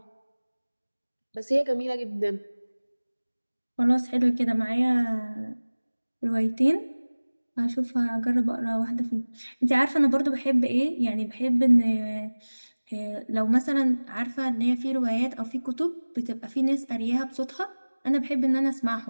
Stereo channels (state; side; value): inverted; both; correlation -1.00